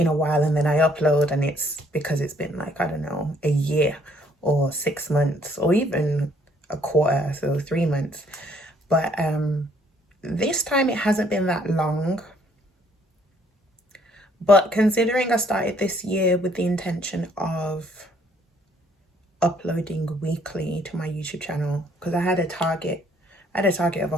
a while, and then I upload and it's because it's been like, I don't know, a year or 6 months or even a quarter, so 3 months. But this time it hasn't been that long. But considering I started this year with the intention of uploading weekly to my YouTube channel, because I had a target of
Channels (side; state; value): both; normal; correlation 0.64